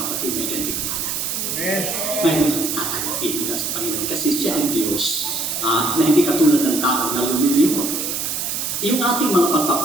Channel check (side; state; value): right; noise; hiss, 2 dB below the sound